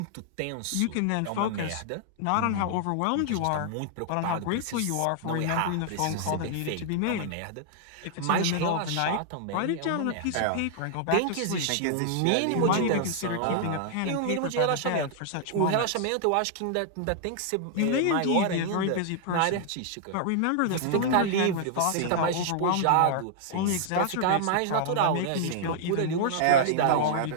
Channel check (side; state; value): both; different; correlation -0.01